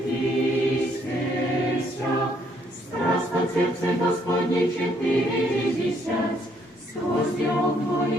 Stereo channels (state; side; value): normal; both; correlation 0.69